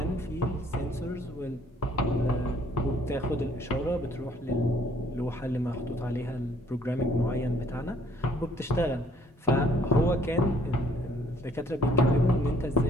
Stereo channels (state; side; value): normal; both; correlation 0.62